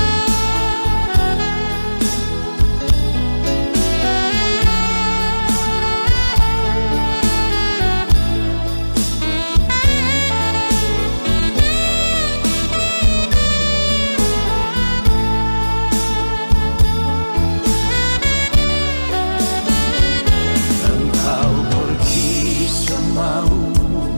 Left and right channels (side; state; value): both; inverted; correlation -1.00